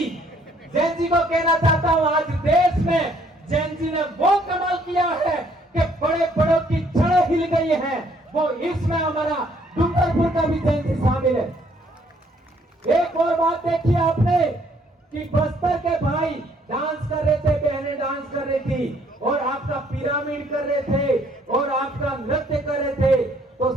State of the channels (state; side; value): normal; both; correlation 0.64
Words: को कहना चाहता हूं, आज देश में जेनजी ने वो कमाल किया है कि बड़े बड़ों की जड़ें हिल गई हैं। वो इसमें हमारा डूंगरपुर का भी जयंती शामिल है। एक और बात देखिए आपने कि बस्तर के भाई डांस कर रहे थे, बहनें डांस कर रही थी और आपका पिरामिड कर रहे थे और आपका नृत्य कर रहे थे। तो